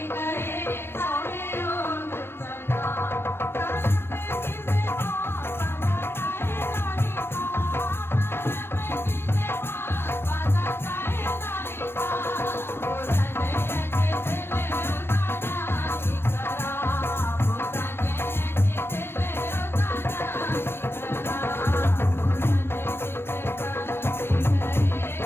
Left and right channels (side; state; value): right; late; 0.11 ms